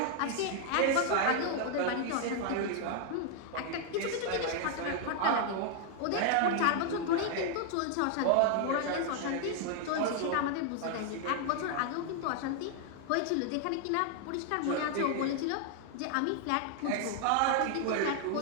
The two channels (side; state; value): both; different; correlation 0.00